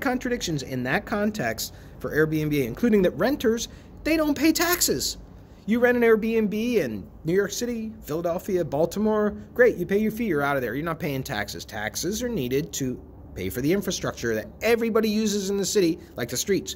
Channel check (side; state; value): both; identical; correlation 1.00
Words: in that context for Airbnb, including that renters, they don't pay taxes. You rent an Airbnb in New York City, Philadelphia, Baltimore, great, you pay your fee, you're out of there. You're not paying taxes. Taxes are needed to pay for the infrastructure that everybody uses in the city, like the streets.